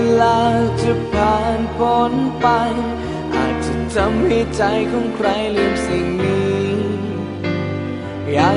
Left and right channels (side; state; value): both; identical; correlation 1.00